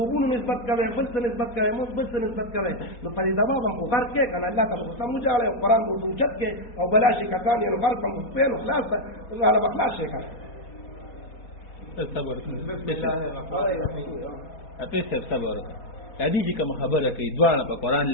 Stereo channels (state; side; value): late; right; 4.2 ms